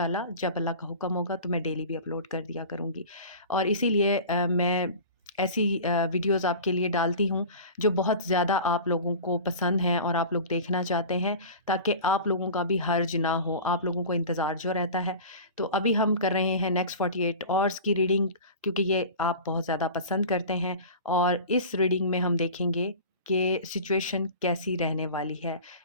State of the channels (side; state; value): both; inverted; correlation -0.36